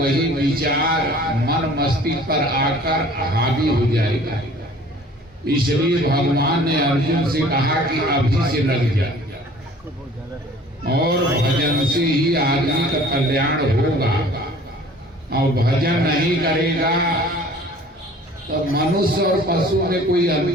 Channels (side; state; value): both; normal; correlation 0.49